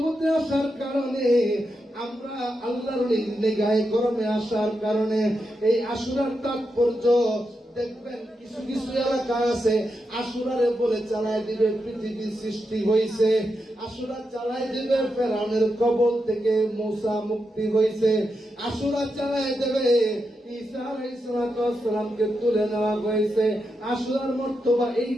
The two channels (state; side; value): normal; both; correlation 0.86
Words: আসার কারণে, আমরা আল্লাহর নিগাহে করমে আসার কারণে এই আশুরার তাৎপর্য দেখবেন কিছু কিছু এলাকা আছে আশুরারে বলে চালায় দিবে পৃথিবী সৃষ্টি হয়েছে, আশুরা চালায় দিবে ফেরাউনের কবল থেকে মূসা মুক্তি হয়েছে, আশুরা চালায় দেবে ঈসা আলাইহিস সালামকে তুলে নেওয়া হয়েছে, আশুরার মর্তবা এই